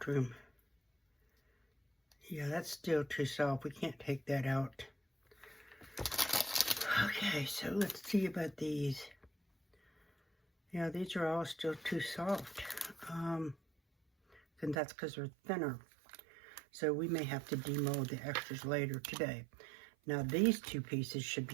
room. Yeah, that's still too soft. We can't take that out. Okay, so let's see about these. Yeah, these are all still too soft. And that's because they're thinner. So we may have to demold the extras later today. Now these two pieces should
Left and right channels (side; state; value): left; drops out; at 14.8 s